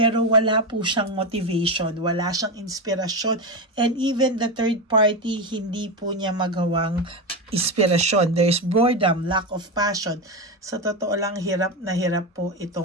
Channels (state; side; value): normal; both; correlation 0.15